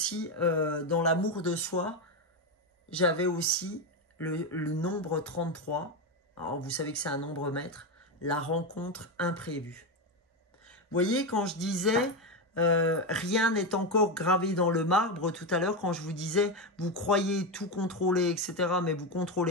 dans l'amour de soi? J'avais aussi le nombre 33. Alors, vous savez que c'est un nombre maître. La rencontre imprévue. Vous voyez, quand je disais... rien n'est encore gravé dans le marbre tout à l'heure quand je vous disais vous croyez tout contrôler, etc. mais vous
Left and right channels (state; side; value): normal; both; correlation 0.11